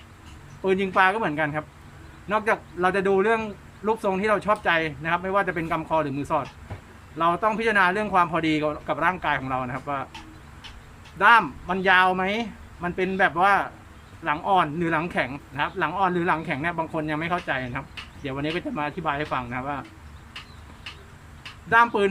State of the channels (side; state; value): both; identical; correlation 1.00